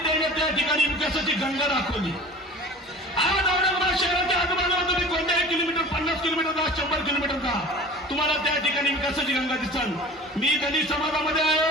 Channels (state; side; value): normal; both; correlation 0.40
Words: त्याने त्या ठिकाणी विकासाची गंगा दाखवली। आज औरंगाबाद शहराच्या आजूबाजूला तुम्ही कोणत्याही किलोमीटर 50 किलोमीटर 100 किलोमीटर जा, तुम्हाला त्या ठिकाणी विकासाची गंगा दिसल। मी दलित समाजामध्ये